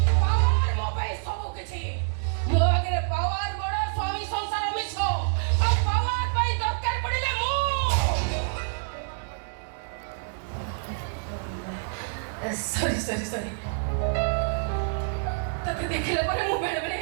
ପାୱାର ମୋ ପାଇଁ ସବୁ କିଛି। ମୋ ଆଗରେ ପାୱାର ବଡ ସ୍ୱାମୀ ସଂସାର ମିଛ ଆଉ ପାୱାର ପାଇଁ ଦରକାର ପଡିଲେ ମୁଁ ସରି ତତେ ଦେଖିଲା ପରେ ମୁଁ ବେଳେବେଳେ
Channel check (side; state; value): left; silent; digital silence